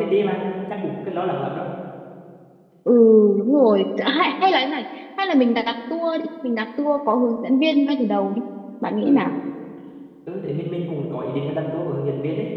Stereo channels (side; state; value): both; identical; correlation 1.00